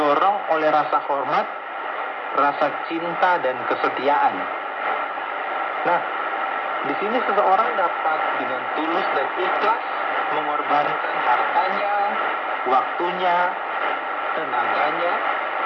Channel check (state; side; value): identical; both; correlation 1.00